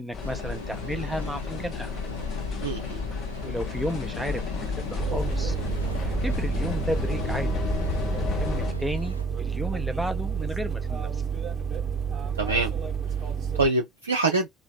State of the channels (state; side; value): normal; both; correlation 0.43